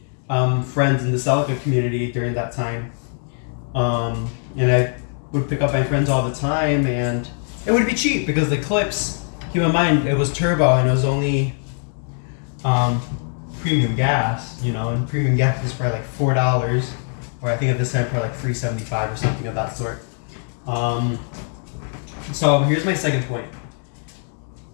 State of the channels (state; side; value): silent; right; 57 dB below the other